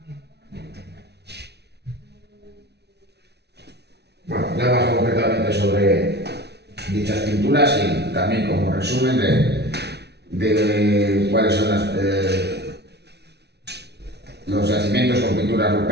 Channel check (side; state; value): left; late; 0.49 ms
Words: Bueno, ya más concretamente sobre dichas pinturas y también como resumen de cuáles son los yacimientos con pinturas